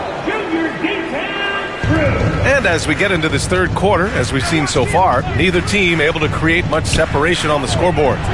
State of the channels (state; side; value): identical; both; correlation 1.00